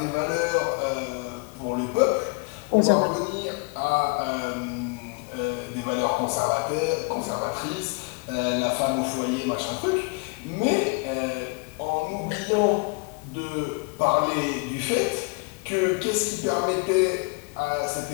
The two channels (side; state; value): right; quieter; 31.2 dB